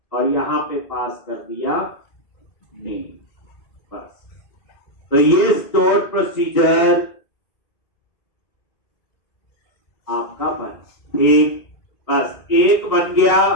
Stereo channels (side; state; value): right; late; 2.5 ms